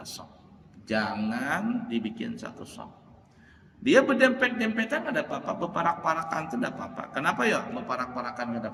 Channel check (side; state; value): both; identical; correlation 1.00